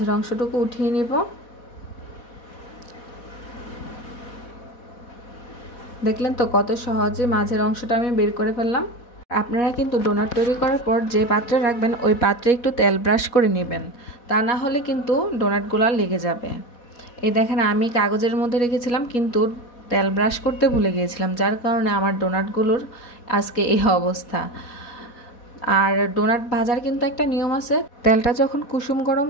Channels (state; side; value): late; right; 4.1 ms